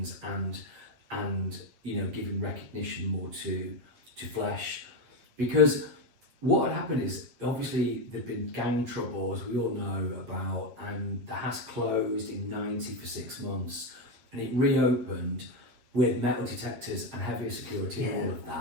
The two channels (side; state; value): left; late; 8.4 ms